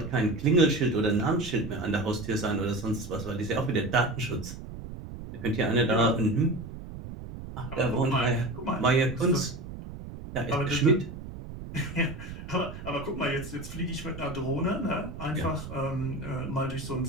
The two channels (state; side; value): noise; right; rumble, 11 dB below the sound